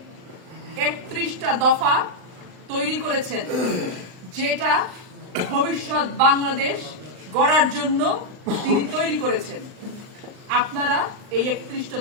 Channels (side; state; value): left; late; 39 ms